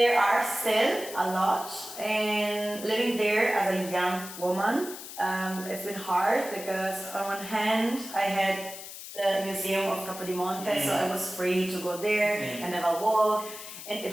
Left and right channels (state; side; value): noise; left; hiss, 12 dB below the sound